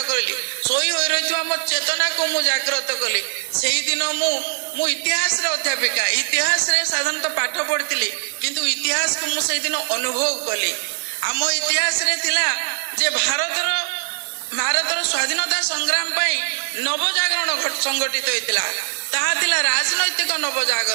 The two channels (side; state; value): left; silent; digital silence